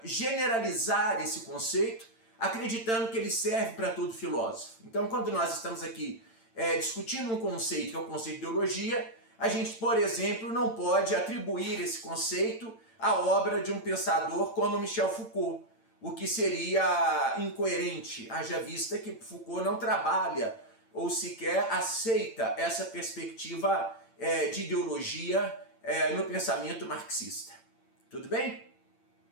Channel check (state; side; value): late; right; 8.9 ms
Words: generalizar esse conceito acreditando que ele serve para todo filósofo. Então, quando nós estamos aqui discutindo um conceito, que é o conceito de ideologia, a gente, por exemplo, não pode atribuir esse conceito à obra de um pensador como Michel Foucault, o que seria incoerente, haja vista que Foucault não trabalha ou sequer aceita essa perspectiva de ideologia no pensamento marxista. Tudo bem?